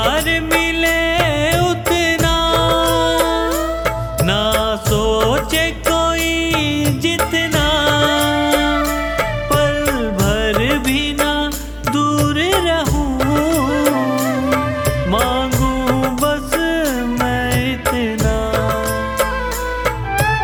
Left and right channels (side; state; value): both; identical; correlation 1.00